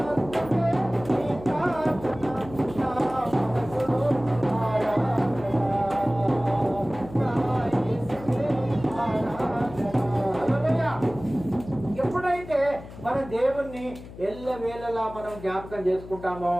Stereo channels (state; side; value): noise; left; hum, 15 dB below the sound